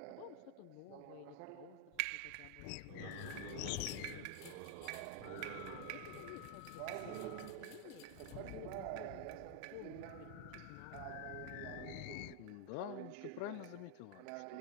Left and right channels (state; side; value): different; both; correlation 0.00